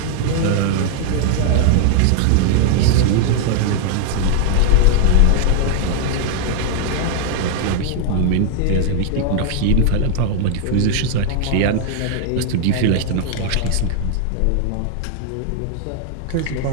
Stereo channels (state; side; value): different; both; correlation 0.00